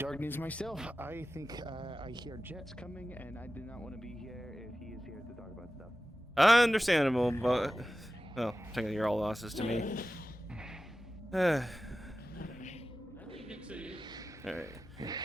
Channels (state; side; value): normal; both; correlation 0.94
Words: myself. I think I hear jets coming, and I do not want to be here if he is here to talk about stuff. Understandable, but well, technically you're all losses to me. All right.